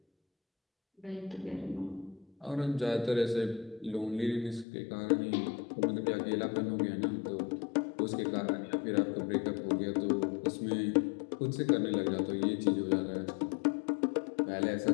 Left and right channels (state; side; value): drops out; right; at 4.7 s